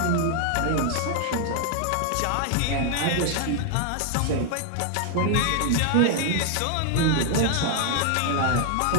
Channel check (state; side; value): different; both; correlation 0.00